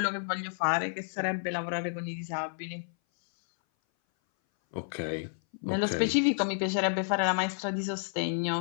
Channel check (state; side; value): silent; right; 57 dB below the other